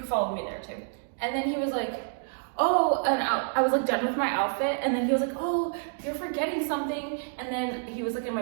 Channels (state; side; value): silent; left; digital silence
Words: follow me there too. And then he was like, "Oh," and I was like done with my outfit, and then he was like, "Oh, you're forgetting something." And then he was like in my